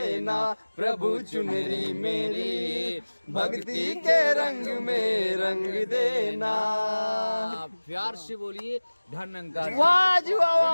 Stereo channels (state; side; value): inverted; both; correlation -1.00